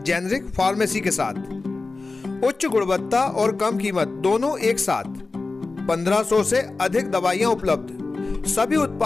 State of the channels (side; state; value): right; quieter; 3.7 dB